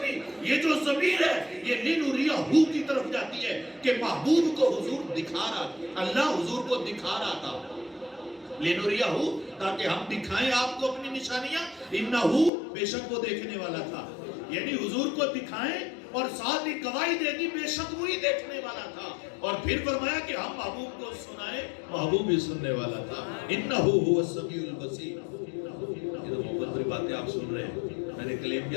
یہ جو ضمیر ہے یہ لنریہ کی طرف جاتی ہے کہ محبوب کو حضور دکھا رہا, اللہ حضور کو دکھا رہا تھا. لنریہ تاکہ ہم دکھائیں آپ کو اپنی نشانیاں. انہو بے شک وہ دیکھنے والا تھا, یعنی حضور کو دکھائیں اور ساتھ ہی گواہی دے دی بے شک وہی دیکھنے والا تھا. اور پھر فرمایا کہ ہم محبوب کو سنائیں, محبوب بھی سننے والا تھا. انہو هو السمیع البصیر. یہ تو محبت بری باتیں آپ سن رہے ہیں. میں نے کلیم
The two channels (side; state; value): right; drops out; at 12.5 s